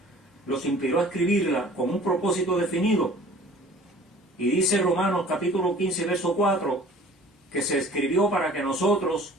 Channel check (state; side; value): normal; both; correlation 0.48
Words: los inspiró a escribirla con un propósito definido. Y dice Romanos capítulo 15, verso 4, que se escribió para que nosotros,